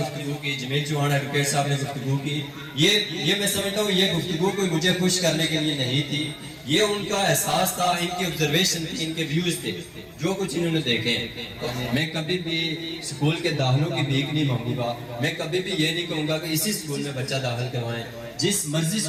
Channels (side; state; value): both; identical; correlation 1.00